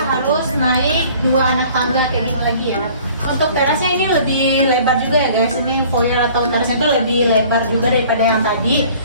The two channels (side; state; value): both; inverted; correlation -0.51